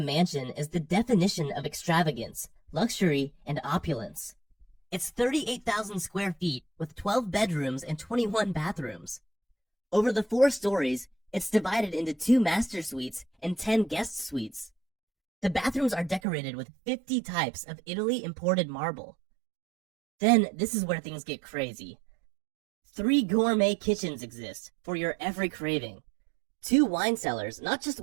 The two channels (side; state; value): left; drops out; at 16.2 s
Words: is the definition of extravagance, luxury, and opulence. It's 38,000 square feet with 12 bedrooms and 21 bathrooms. Over the 4 stories, it's divided into 2 master suites and 10 guest suites. The bathrooms are decorated with 50 types of Italy imported marble. Then, this is where things get crazy. 3 gourmet kitchens exist for your every craving. 2 wine cellars, not just